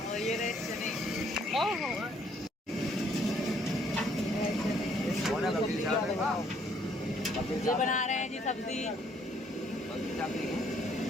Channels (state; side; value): normal; both; correlation 0.65